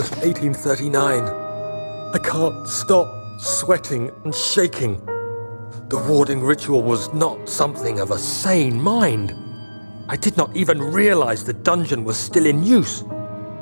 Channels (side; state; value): both; inverted; correlation -1.00